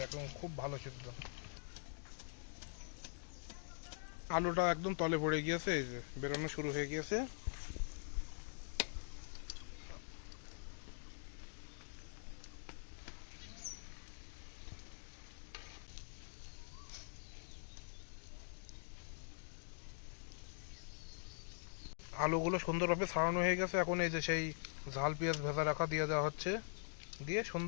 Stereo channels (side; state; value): right; silent; digital silence